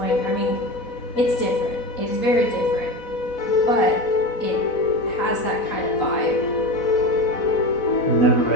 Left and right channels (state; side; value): late; right; 4.0 ms